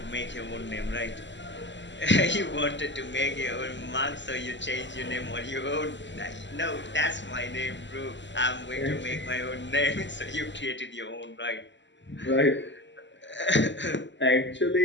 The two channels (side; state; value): right; late; 0.53 ms